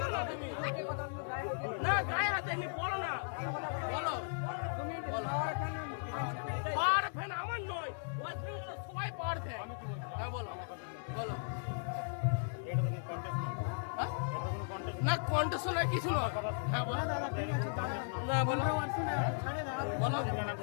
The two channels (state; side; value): silent; right; 53 dB below the other